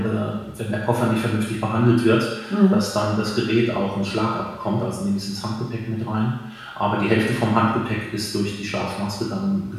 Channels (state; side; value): identical; both; correlation 1.00